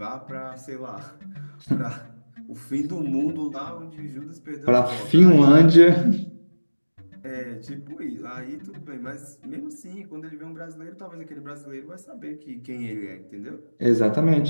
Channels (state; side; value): inverted; both; correlation -1.00